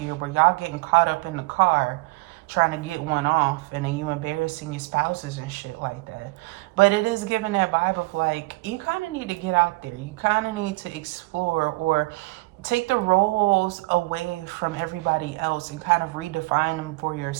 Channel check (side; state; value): left; quieter; 24.5 dB